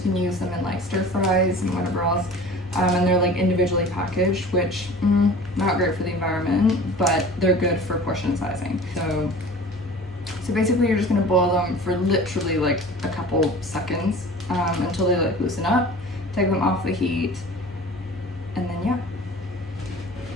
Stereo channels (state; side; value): normal; both; correlation 0.42